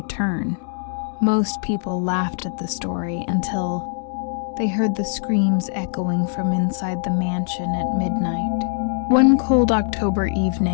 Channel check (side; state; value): right; silent; digital silence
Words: Most people laughed at the story until they heard the screams echoing from inside the mansion at midnight. One cold October